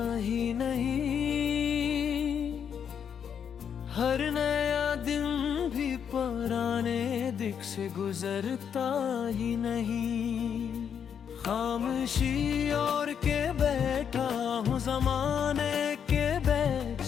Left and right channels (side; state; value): right; quieter; 7.8 dB